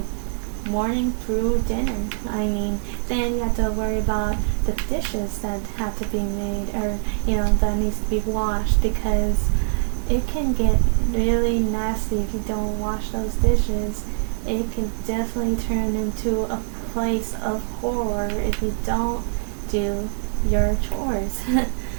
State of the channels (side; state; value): left; silent; 61 dB below the other